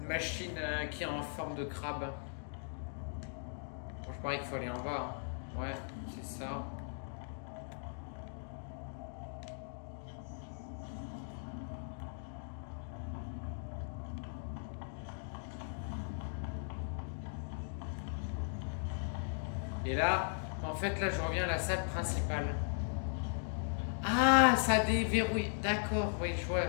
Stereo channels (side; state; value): right; silent; digital silence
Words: machine qui est en forme de crabe. Bon, je parie qu'il faut aller en bas. Hein. Ouais, c'est ça. Et là, en fait, là, je reviens à la salle principale. Ah, ça déverrouille. D'accord, oui, je